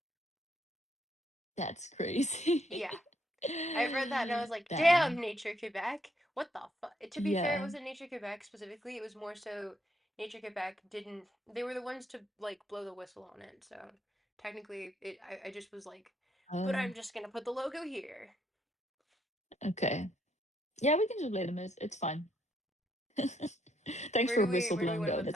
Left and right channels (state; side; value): normal; both; correlation 0.73